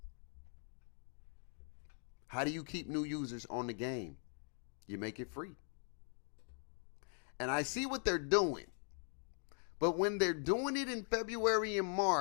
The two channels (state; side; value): silent; right; 50 dB below the other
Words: How do you keep new users on the game? You make it free. And I see what they're doing. But when they're doing it in February and